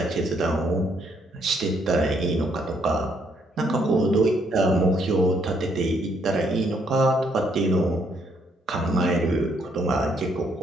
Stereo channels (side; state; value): both; normal; correlation 0.71